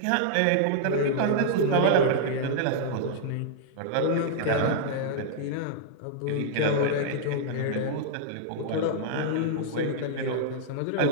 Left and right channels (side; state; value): both; different; correlation -0.01